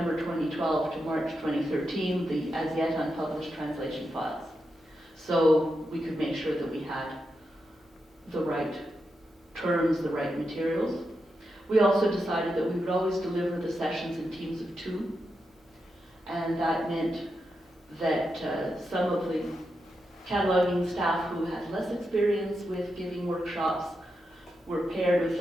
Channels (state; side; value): normal; both; correlation 0.86